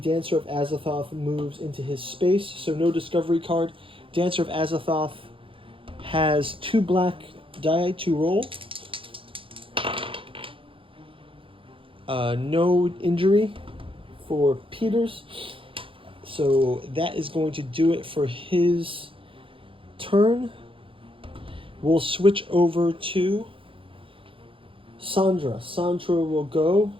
of Azathoth moves into his space. So no discovery card. Dancer of Azathoth has 2 black die to roll. No injury for Peters. So that is going to do it for his turn. We'll switch over to Sandra. Sandra will go.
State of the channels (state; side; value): late; left; 0.25 ms